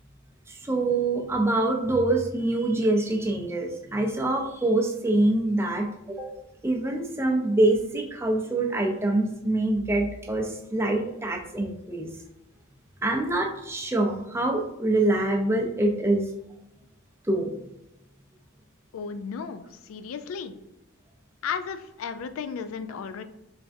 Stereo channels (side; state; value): both; normal; correlation 0.61